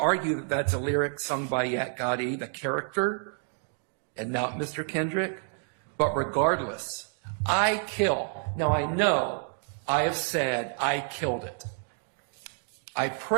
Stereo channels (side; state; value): left; silent; 59 dB below the other